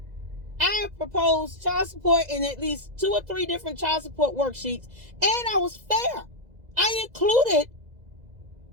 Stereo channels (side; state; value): left; late; 2.0 ms